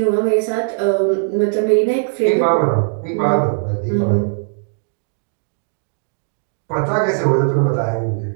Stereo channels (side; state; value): left; silent; digital silence